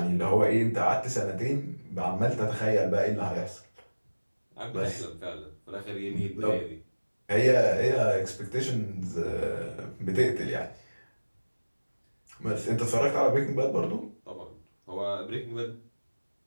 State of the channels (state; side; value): inverted; both; correlation -1.00